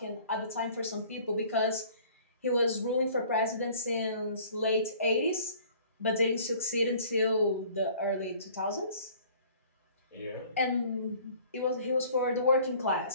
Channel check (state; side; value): inverted; both; correlation -0.52